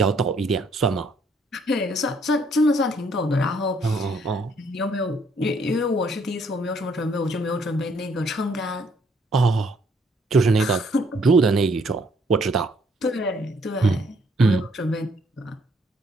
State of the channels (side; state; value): both; normal; correlation 0.67